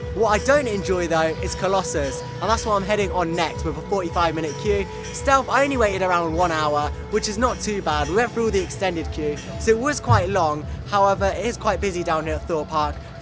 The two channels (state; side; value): identical; both; correlation 1.00